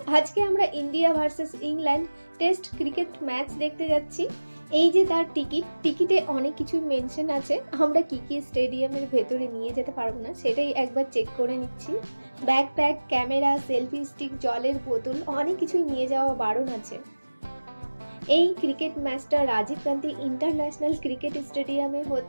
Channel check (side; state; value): both; inverted; correlation -1.00